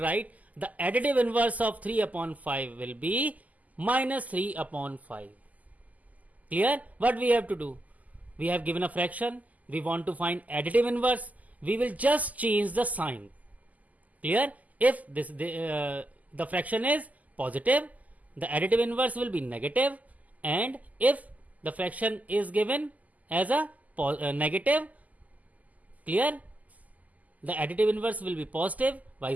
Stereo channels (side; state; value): left; late; 0.078 ms